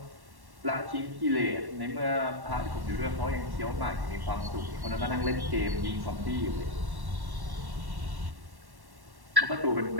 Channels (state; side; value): late; left; 1.1 ms